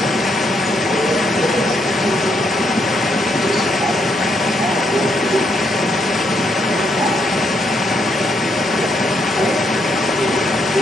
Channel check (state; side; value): normal; both; correlation 0.75